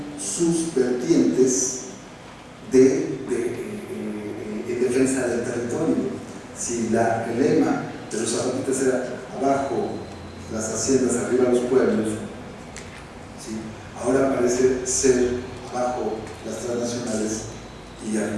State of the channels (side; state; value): both; identical; correlation 1.00